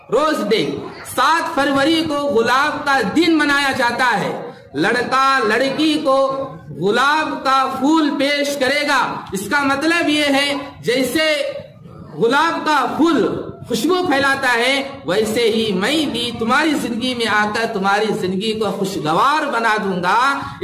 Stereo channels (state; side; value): identical; both; correlation 1.00